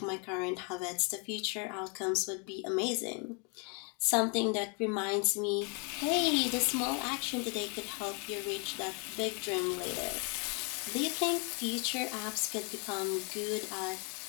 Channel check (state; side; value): quieter; right; 35.5 dB